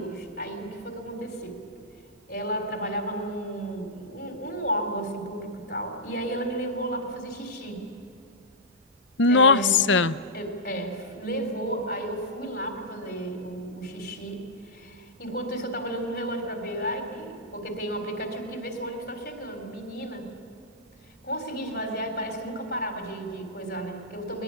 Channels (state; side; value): normal; both; correlation -0.11